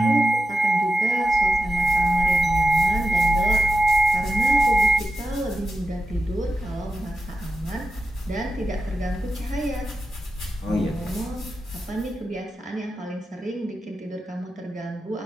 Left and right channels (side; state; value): both; normal; correlation 0.89